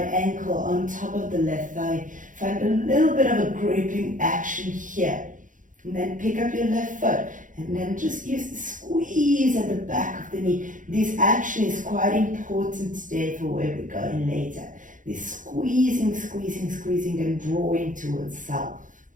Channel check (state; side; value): late; left; 0.38 ms